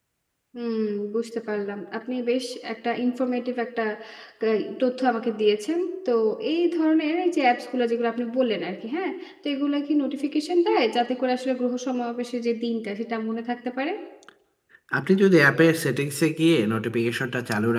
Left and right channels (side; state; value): both; identical; correlation 1.00